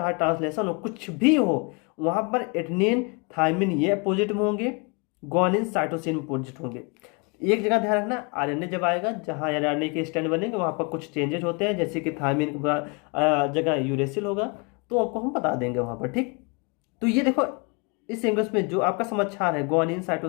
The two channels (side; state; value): right; quieter; 32.0 dB